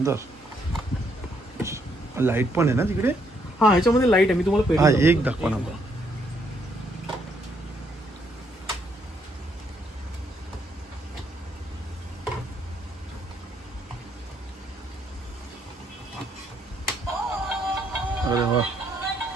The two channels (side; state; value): both; normal; correlation 0.72